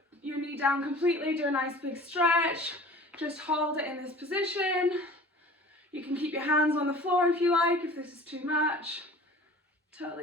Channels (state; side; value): normal; both; correlation 0.43